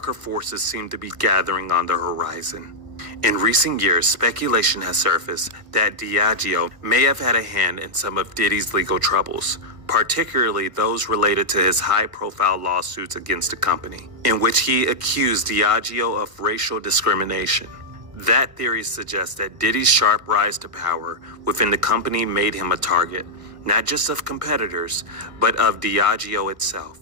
forces seemed to be gathering on the horizon. In recent years, speculation has surfaced that Diageo may have had a hand in some of Diddy's legal troubles, particularly those related to his high-profile lawsuits against the company, in which he accused Diageo of racial discrimination. That theory suggests that Diddy's sharp rise to power within the company made him a target, not just of competitors, but of Diageo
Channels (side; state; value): left; late; 1.6 ms